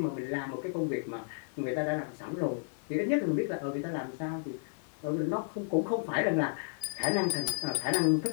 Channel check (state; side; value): silent; right; 56 dB below the other